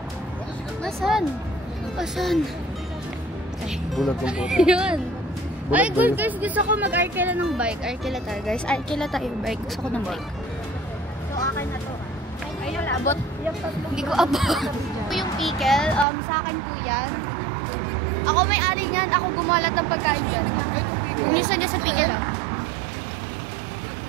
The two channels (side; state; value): left; drops out; at 16.1 s